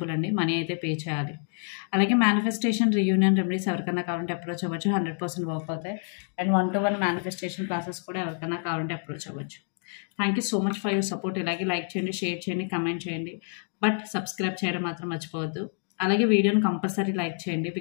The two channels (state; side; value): silent; right; 56 dB below the other